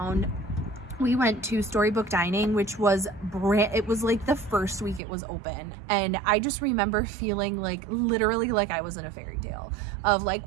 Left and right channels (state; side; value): drops out; left; at 5.0 s